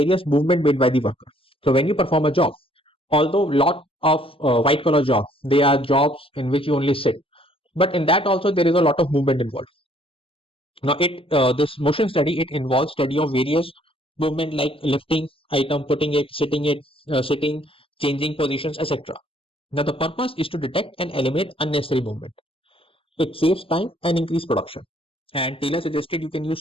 movement made by the worker. So, when you perform a job, although lot of white collar jobs, they are jobs in which you only sit, but in that also there is a lot of movement involved. Now, this motion study, it involves study of various movement like lifting item, putting it, sitting, changing positions, etc. Now, the purpose is to detect and eliminate unnecessary movement. It saves time and increase production. And Taylor suggested you can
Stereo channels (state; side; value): late; right; 0.26 ms